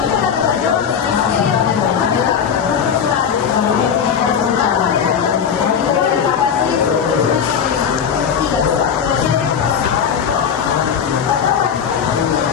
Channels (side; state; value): right; quieter; 7.5 dB